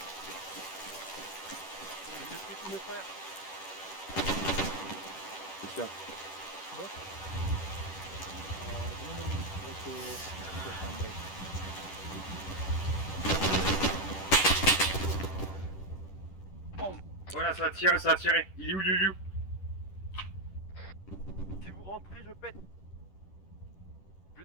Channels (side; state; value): right; late; 10 ms